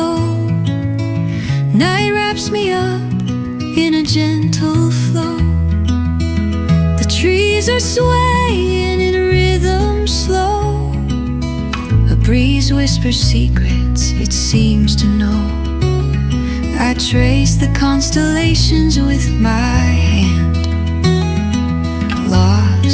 Night wraps me up in a gentle flow. The trees are swaying in rhythm slow. A breeze whispers secrets it seems to know. I trace the constellations with my hand,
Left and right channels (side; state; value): both; identical; correlation 1.00